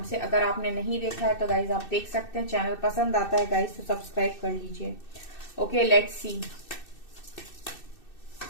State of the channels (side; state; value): right; late; 2.6 ms